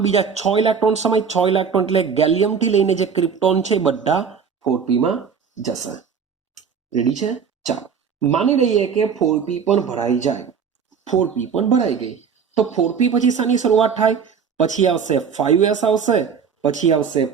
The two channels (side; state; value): left; quieter; 6.6 dB